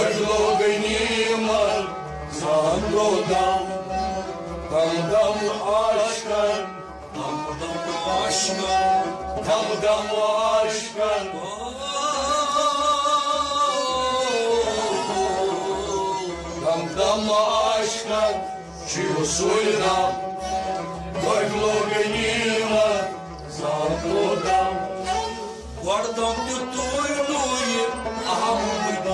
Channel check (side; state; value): both; identical; correlation 1.00